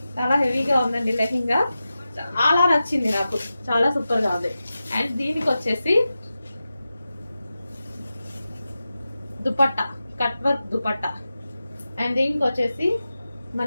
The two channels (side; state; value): both; inverted; correlation -0.93